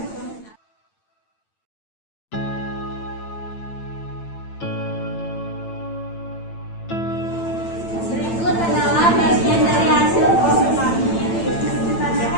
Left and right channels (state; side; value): late; right; 8.9 ms